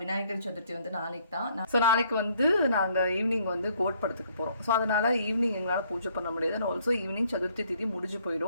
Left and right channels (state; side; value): inverted; both; correlation -0.65